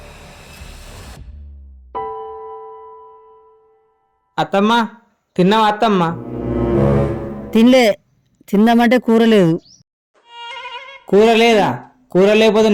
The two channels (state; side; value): identical; both; correlation 1.00